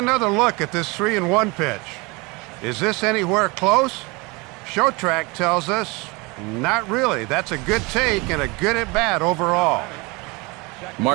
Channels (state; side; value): quieter; left; 26.4 dB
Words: look at this 3-1 pitch. Is this anywhere close? Show track tells us not really. That's a good take and a good at bat overall.